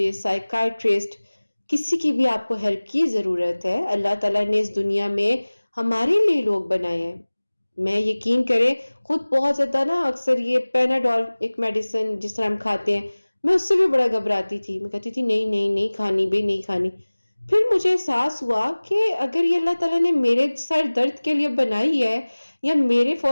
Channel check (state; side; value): inverted; both; correlation -1.00